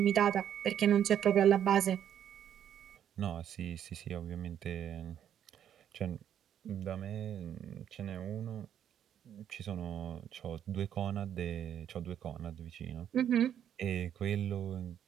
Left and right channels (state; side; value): quieter; left; 9.8 dB